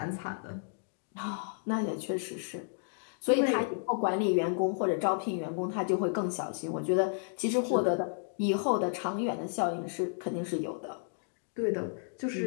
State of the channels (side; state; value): right; silent; digital silence